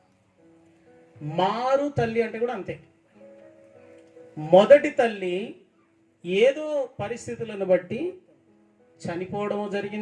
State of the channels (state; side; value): identical; both; correlation 1.00